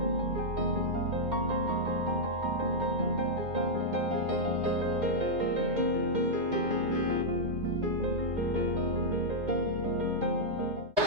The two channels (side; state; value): left; late; 2.2 ms